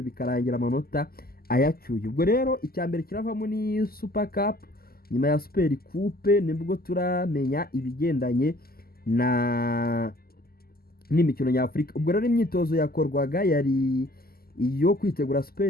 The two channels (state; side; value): late; right; 0.44 ms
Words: bikarangira amanota ayacyuye. Ubwo rero icyambere kiravamo ni Super Cup, nyuma ya Super Coupe nibwo turamenya ibigendanye n'imikino nyafurika. Ubwo rero imyitozo yakorwaga yari iyo kwitegura